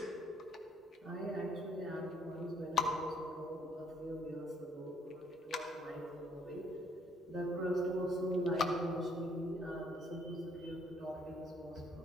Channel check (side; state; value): both; normal; correlation 0.66